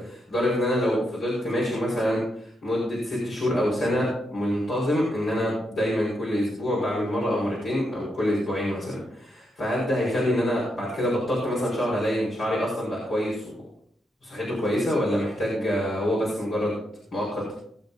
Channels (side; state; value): both; normal; correlation 0.81